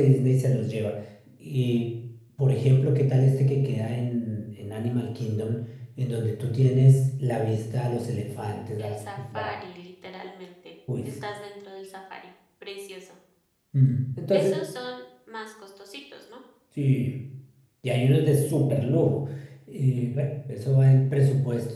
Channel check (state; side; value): identical; both; correlation 1.00